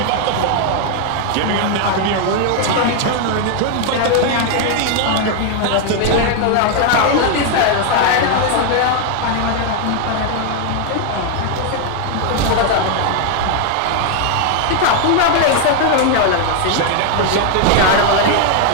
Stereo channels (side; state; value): both; different; correlation 0.00